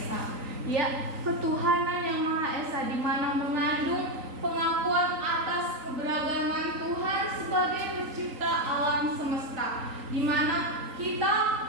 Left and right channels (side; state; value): left; late; 3.9 ms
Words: Ya, ketuhanan yang Maha Esa, di mana mengandung pengakuan atas keberagaman Tuhan sebagai pencipta alam semesta, di mana kita